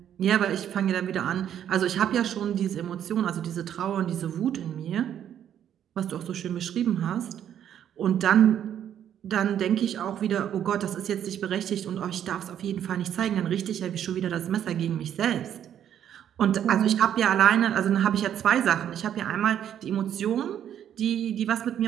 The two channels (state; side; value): quieter; left; 9.9 dB